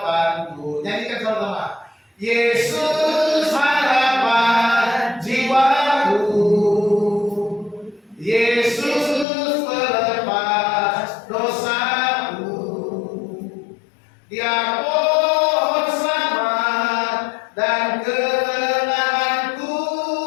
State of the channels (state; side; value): drops out; right; at 9.2 s